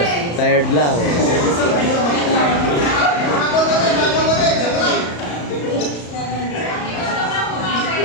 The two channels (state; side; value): late; right; 34 ms